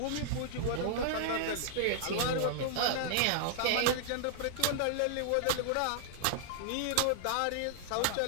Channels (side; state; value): both; different; correlation -0.01